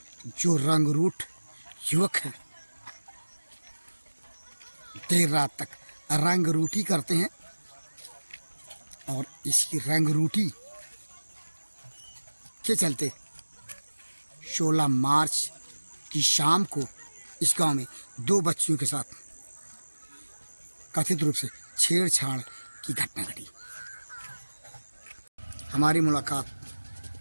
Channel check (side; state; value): both; inverted; correlation -1.00